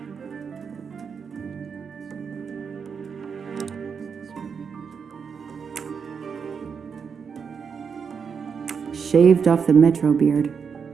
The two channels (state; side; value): quieter; left; 6.3 dB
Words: Shaved off the Metro beard.